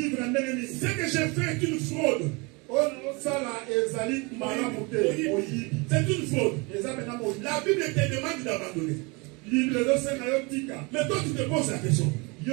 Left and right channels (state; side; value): quieter; left; 28.1 dB